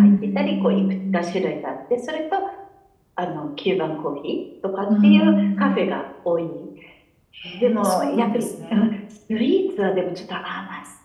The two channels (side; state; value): both; identical; correlation 1.00